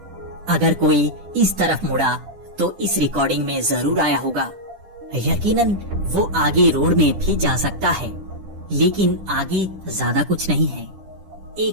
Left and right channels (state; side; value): late; left; 10 ms